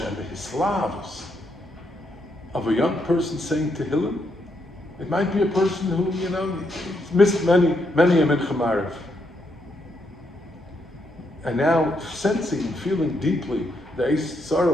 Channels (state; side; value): normal; both; correlation 0.78